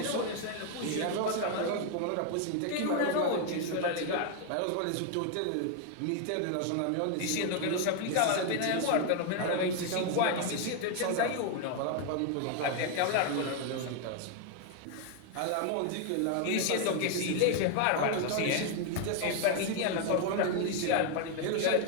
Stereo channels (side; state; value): both; different; correlation 0.01